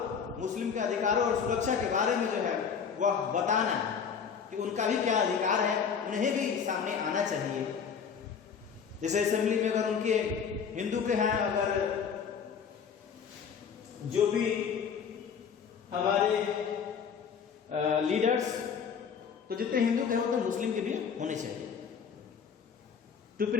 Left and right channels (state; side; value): quieter; right; 6.8 dB